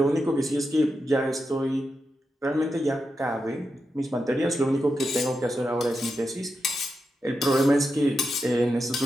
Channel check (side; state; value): both; normal; correlation 0.88